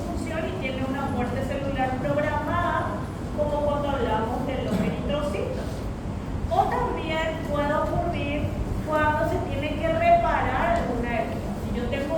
y tiene una muerte celular programada, como cuando hablamos de los eritrocitos. O también puede ocurrir cuando se tiene que reparar alguna herida. Si yo tengo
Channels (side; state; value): both; identical; correlation 1.00